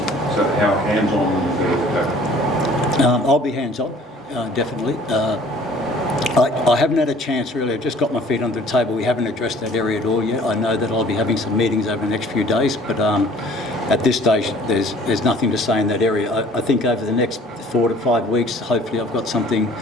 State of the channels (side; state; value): both; normal; correlation 0.52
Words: So how hands-on is the coach? I'll be hands-on. Definitely. I haven't had a chance really. I've just got my feet under the table. We haven't addressed that area at all yet. I know that I'll be having some meetings over the next few days, but at this stage there's nothing to say in that area. I think over the next 4 to 5 weeks, hopefully I've got something